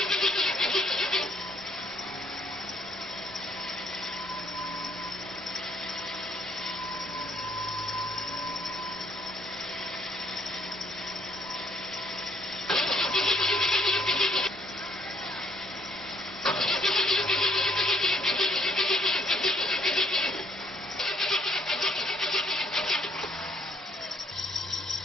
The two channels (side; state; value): both; normal; correlation 0.66